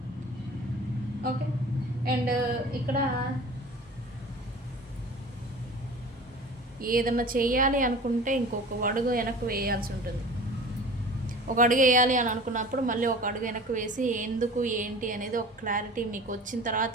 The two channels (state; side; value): normal; both; correlation 0.40